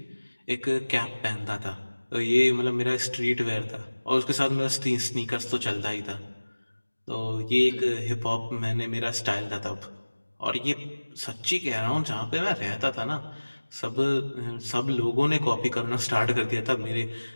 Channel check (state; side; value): inverted; both; correlation -1.00